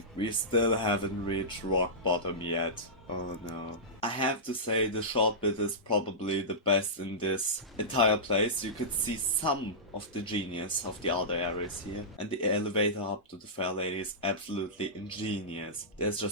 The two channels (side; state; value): both; normal; correlation -0.15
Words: We still haven't reached rock bottom yet. Oh no. I have to say the short bit is probably the best in this entire place. You could see some of the genius of the other areas here. And the elevator up to the Fair Lady is absolutely ingenious. There's